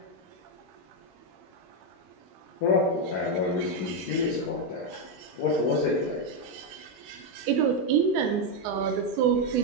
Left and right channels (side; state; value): both; normal; correlation 0.04